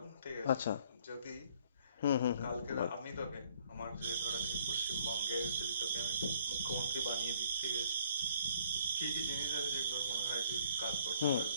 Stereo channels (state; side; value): inverted; both; correlation -0.61